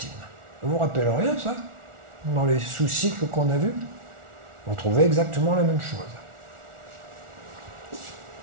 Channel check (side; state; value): left; late; 1.4 ms